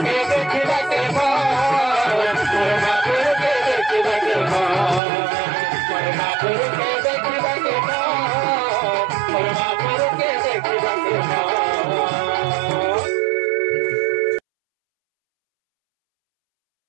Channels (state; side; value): drops out; left; at 5.0 s